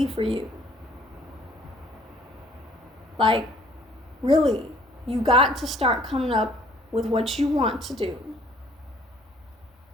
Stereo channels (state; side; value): normal; both; correlation 0.58